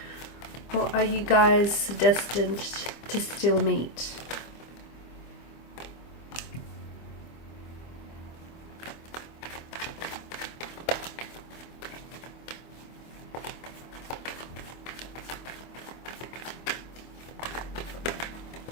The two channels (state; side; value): late; right; 25 ms